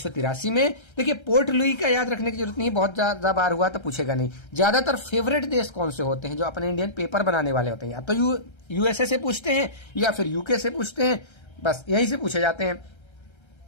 में। देखिए पोर्ट लुई का याद रखने की जरूरत नहीं, बहुत ज्यादा बार हुआ तो पूछेगा नहीं। ज्यादातर फेवरेट देश कौन से होते हैं जो अपने इंडियन पेपर बनाने वाले होते हैं, या तो यूएसए से पूछते हैं या फिर यूके से पूछते हैं, बस यहीं से पूछे जाते हैं।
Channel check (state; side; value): late; right; 1.3 ms